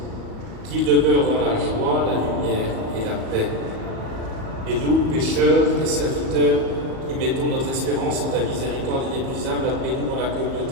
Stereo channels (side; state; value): left; late; 37 ms